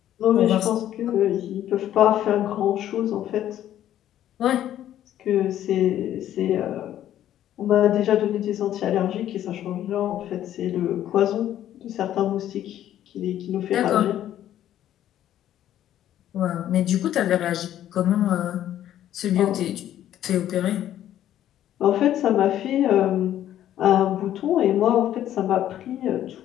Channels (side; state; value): right; quieter; 11.8 dB